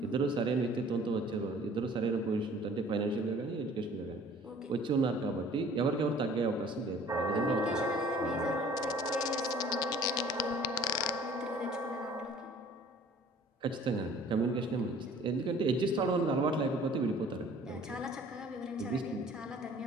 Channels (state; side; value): normal; both; correlation 0.51